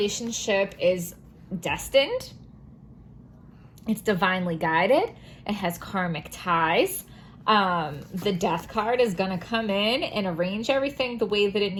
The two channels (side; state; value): both; identical; correlation 1.00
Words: is destined. It's divinely guided. It has karmic ties. The Death card is going to come in and arrange everything the way that it